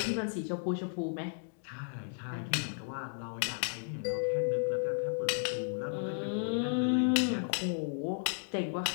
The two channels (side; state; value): right; silent; digital silence